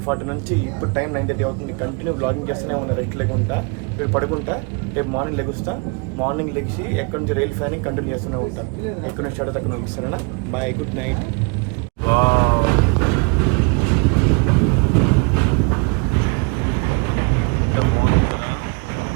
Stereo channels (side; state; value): left; quieter; 33.0 dB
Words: నుంచి ఇప్పుడు టైం 9:30 అవుతుంది. కంటిన్యూ బ్లాగింగ్ చేస్తూనే ఉన్నా రెస్ట్ లేకుండా. ఇప్పుడు పడుకుంటా, రేపు మార్నింగ్ లెగుస్తా. మార్నింగ్ లెగిసి ఎక్కడి నుంచి రైల్ ఫ్యానింగ్ కంటిన్యూ చేస్తూనే ఉంటా. ఎక్కడి నుంచి స్టార్ట్ అక్కడ నుంచి. సరేనా? Bye, good night.